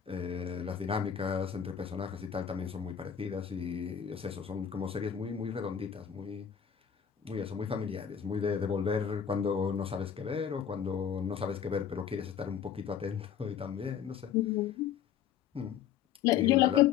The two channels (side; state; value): right; quieter; 8.3 dB